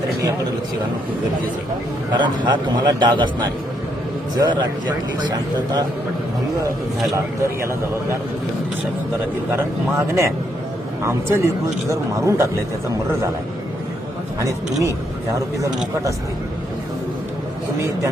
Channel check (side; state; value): both; normal; correlation 0.75